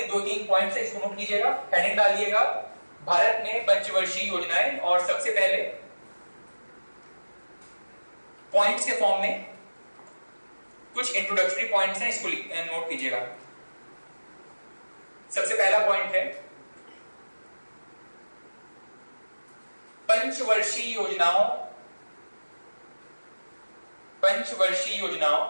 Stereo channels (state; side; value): inverted; both; correlation -1.00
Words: 2-3 पॉइंट्स है, इसको नोट कीजिएगा, हेडिंग डालिएगा भारत में पंचवर्षीय योजनाएं, और सबसे पहले पॉइंट्स के फॉर्म में कुछ इंट्रोडक्टरी पॉइंट्स हैं, इसको नोट कीजिएगा। सबसे पहला पॉइंट है पंचवर्षीय योजनाओं